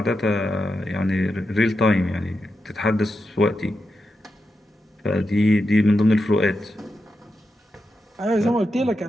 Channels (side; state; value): both; normal; correlation 0.88